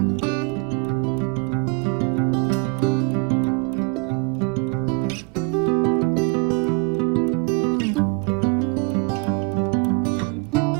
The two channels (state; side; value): quieter; left; 33.4 dB